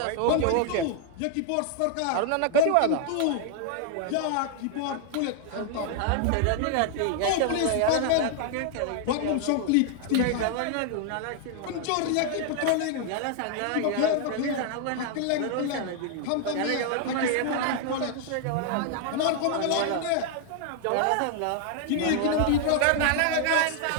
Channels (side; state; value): both; different; correlation 0.00